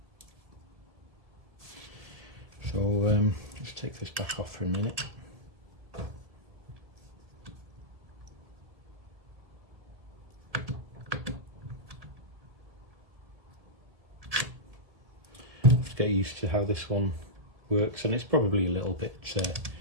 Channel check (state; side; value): late; left; 1.7 ms